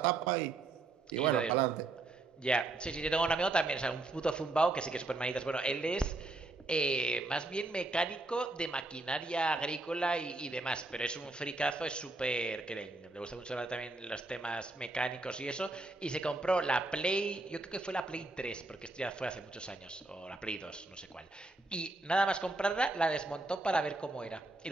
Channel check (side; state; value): left; quieter; 3.1 dB